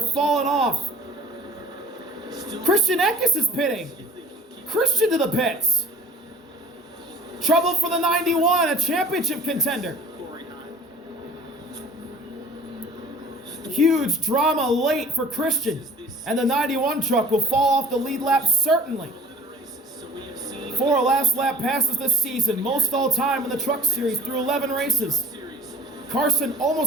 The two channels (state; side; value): normal; both; correlation 0.46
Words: off. Christian Eckes is pitting. Christian to the pits. Trouble for the 91, a championship contender. Huge drama late for Christian, and the 91 truck will fall off the lead lap certainly. 4 last lap passes this season, most all time in the Truck Series through 11 races. Carson